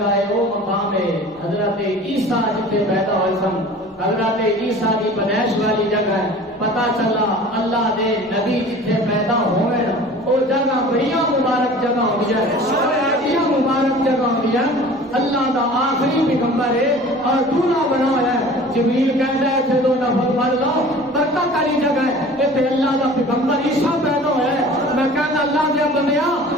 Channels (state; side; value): normal; both; correlation 0.43